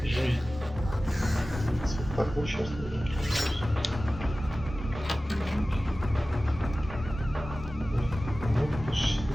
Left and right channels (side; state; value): both; normal; correlation 0.96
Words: жизнь. Так, ну сейчас. Ну,